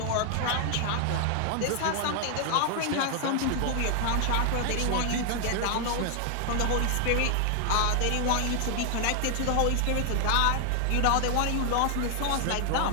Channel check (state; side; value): different; both; correlation 0.00